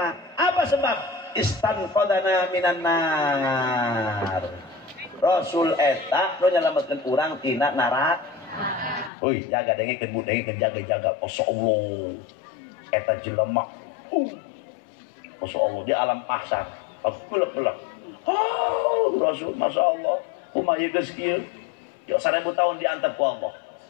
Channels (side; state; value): right; drops out; at 9.1 s